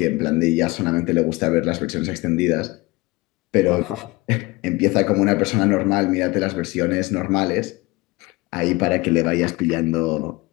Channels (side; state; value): right; quieter; 22.2 dB